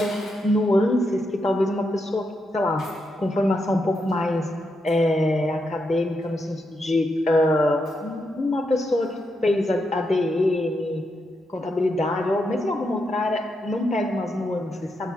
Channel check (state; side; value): normal; both; correlation 0.83